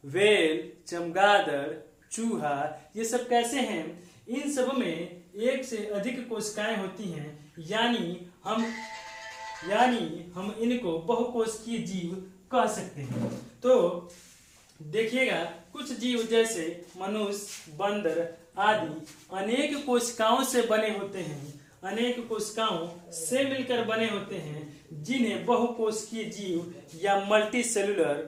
वेल, चमगादड़, चूहा, ये सब कैसे हैं, इन सब में एक से अधिक कोशिकाएं होती हैं, यानी हम इनको बहुकोशिकीय जीव कह सकते हैं। तो देखिएगा कुछ जीव जैसे मनुष्य, बंदर आदि अनेक कोशिकाओं से बने होते हैं, अनेक कोशिकाओं से मिलकर बने होते हैं, जिन्हें बहुकोशिकीय जीव या मल्टी सेलुलर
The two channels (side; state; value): both; identical; correlation 1.00